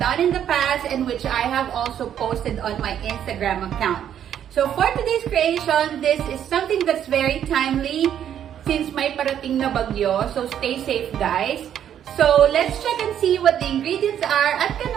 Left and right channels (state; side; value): quieter; left; 9.8 dB